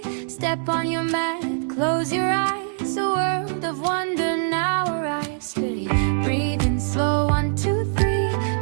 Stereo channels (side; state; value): left; silent; digital silence